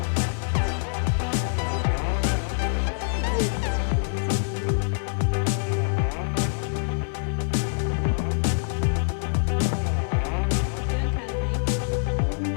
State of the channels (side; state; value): right; silent; 62 dB below the other